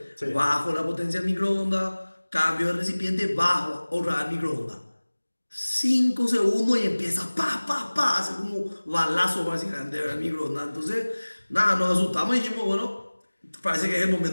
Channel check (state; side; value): inverted; both; correlation -1.00